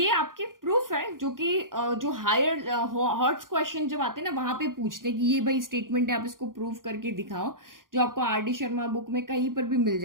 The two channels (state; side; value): late; left; 0.90 ms